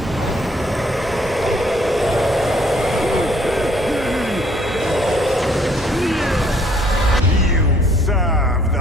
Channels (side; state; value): both; normal; correlation 0.63